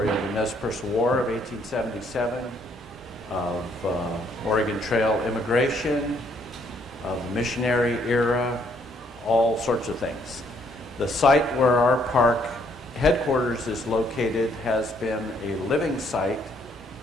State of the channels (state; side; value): normal; both; correlation 0.68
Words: of the Nez Perce War of 1877, of Oregon Trail immigration, of the missionary era, all sorts of things. The site where our park headquarters is located has been a living site